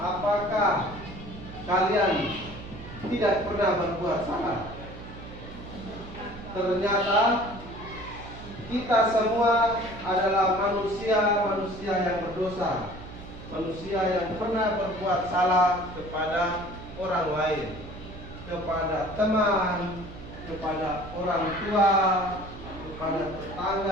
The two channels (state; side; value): noise; right; hum, 14 dB below the sound